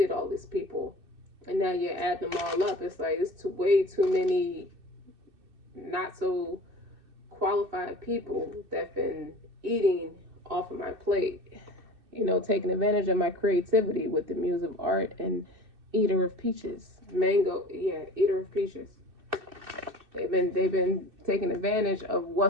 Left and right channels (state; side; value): late; left; 2.6 ms